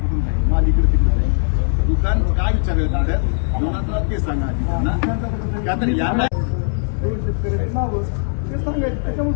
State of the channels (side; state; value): right; silent; 66 dB below the other